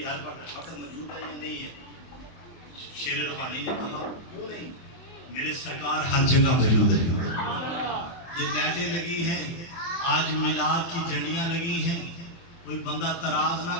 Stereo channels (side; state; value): right; late; 24 ms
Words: ہر وقت موجود ہے یا نہیں ہے؟ شیر ربانی نے کہا کیوں نہیں، میرے سرکار ہر جگہ موجود ہے۔ یہ لائٹیں لگی ہیں، آج میلاد کی جھنڈیاں لگی ہیں، کوئی بندہ تراز نہ